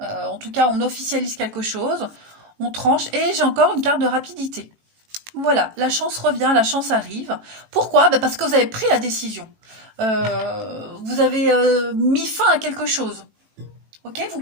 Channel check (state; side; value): late; left; 18 ms